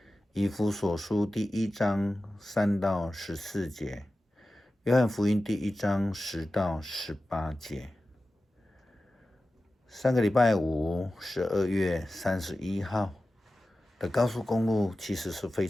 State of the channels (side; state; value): both; normal; correlation 0.95